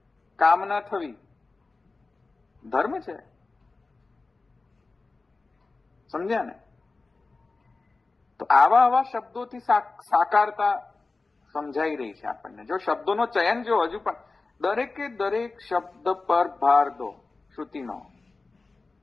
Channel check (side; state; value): right; quieter; 3.7 dB